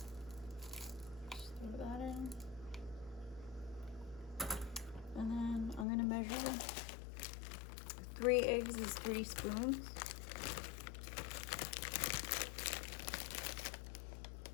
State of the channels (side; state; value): right; drops out; at 5.9 s